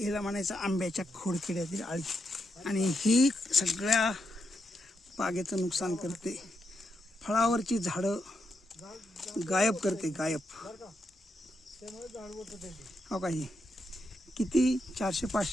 हिला म्हणायचं आंब्याच्या खोडकिड्यातील आळी. आणि ही सगळ्या बागेचं नुकसान करते. फळावरची झाडं गायब करते, गायब. हो का, ही किती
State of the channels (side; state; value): both; normal; correlation 0.83